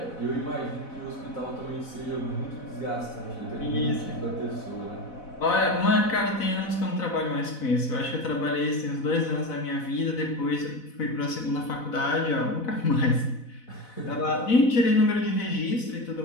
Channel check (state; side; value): late; right; 4.0 ms